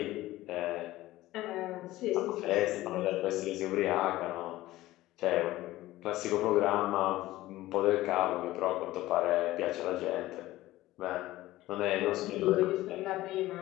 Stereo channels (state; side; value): quieter; right; 16.7 dB